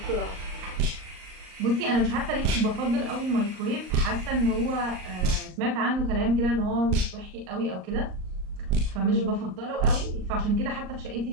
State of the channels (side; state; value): left; late; 38 ms